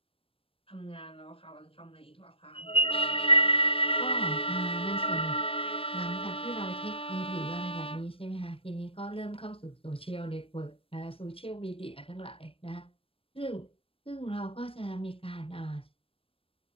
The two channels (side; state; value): right; late; 0.27 ms